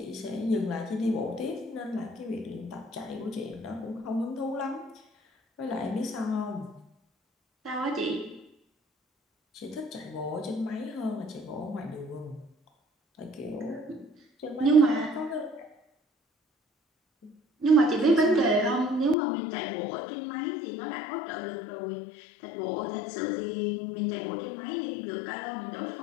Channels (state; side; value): drops out; right; at 19.2 s